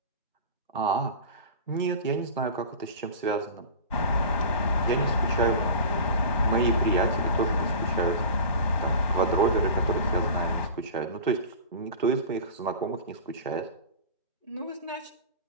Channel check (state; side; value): inverted; both; correlation -0.33